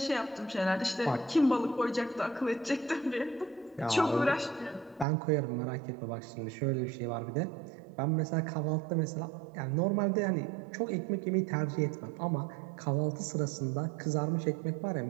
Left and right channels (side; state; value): left; drops out; at 5.1 s